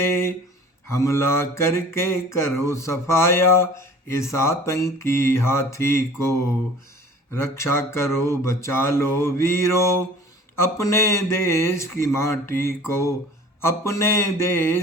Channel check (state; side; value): normal; both; correlation 0.45